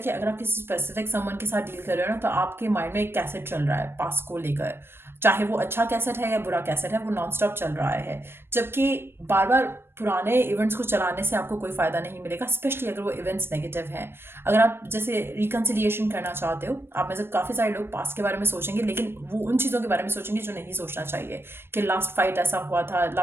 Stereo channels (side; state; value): left; late; 0.11 ms